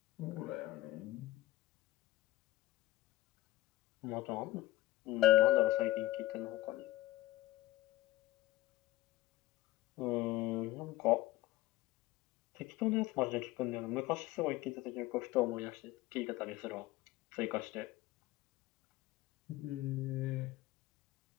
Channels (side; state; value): right; quieter; 16.6 dB